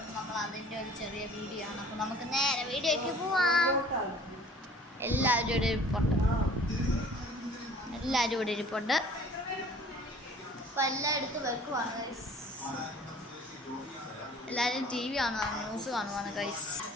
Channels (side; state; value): both; normal; correlation 0.50